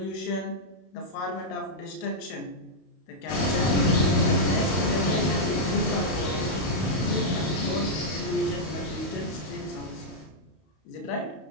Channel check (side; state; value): right; late; 32 ms